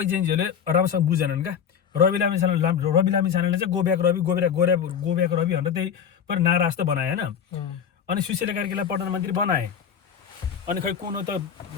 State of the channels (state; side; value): quieter; right; 7.9 dB